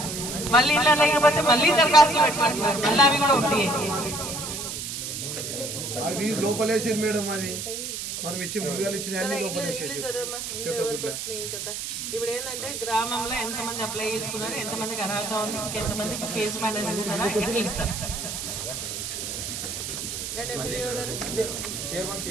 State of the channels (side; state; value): right; noise; hiss, 5 dB below the sound